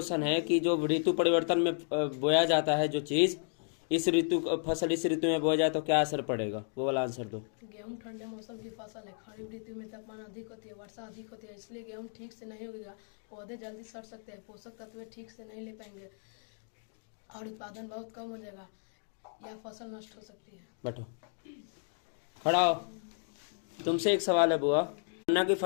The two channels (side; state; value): right; silent; 55 dB below the other